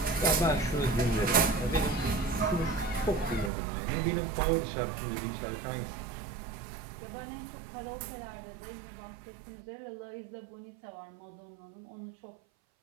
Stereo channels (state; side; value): drops out; left; at 3.5 s